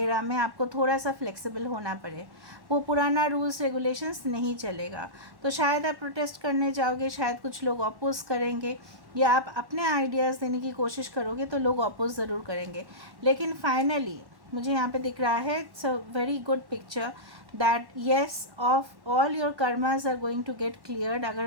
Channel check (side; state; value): left; late; 1.1 ms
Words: में आपको थोड़ा सा फ्लेक्सिबल होना पड़े, वो पुराना रूल्स रेगुलेशंस नहीं चलेगा। तो शायद आप प्रोटेस्ट करने जाओगे, शायद कुछ लोग अपोज करेंगे, या आप अपने आइडियाज़ देने की कोशिश करोगे तो लोग अपोज ज़रूर करेंगे। लेकिन फाइनली मुझे यहाँ पे दिख रहा है, it's a very good picture that yes of all your karmas are going to get cleared.